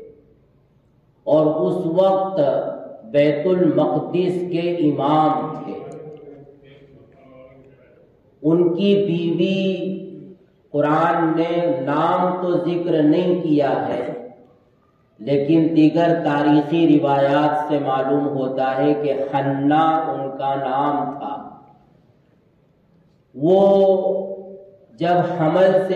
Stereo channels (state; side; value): identical; both; correlation 1.00